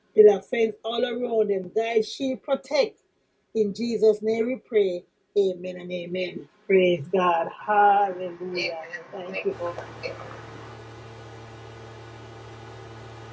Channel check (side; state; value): both; identical; correlation 1.00